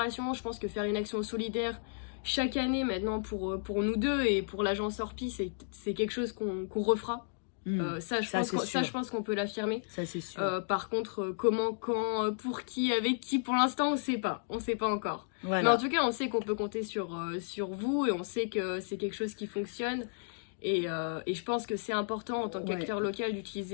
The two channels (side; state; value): right; silent; digital silence